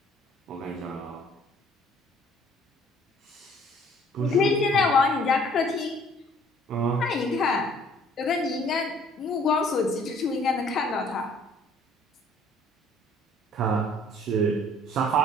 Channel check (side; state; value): both; normal; correlation 0.57